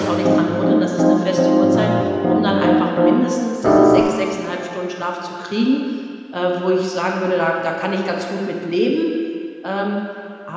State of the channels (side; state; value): both; identical; correlation 1.00